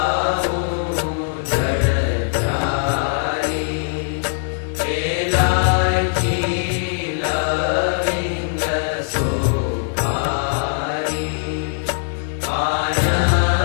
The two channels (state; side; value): silent; right; 55 dB below the other